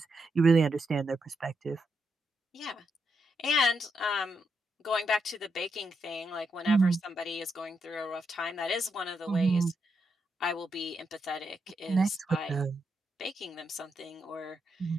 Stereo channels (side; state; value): both; normal; correlation 0.82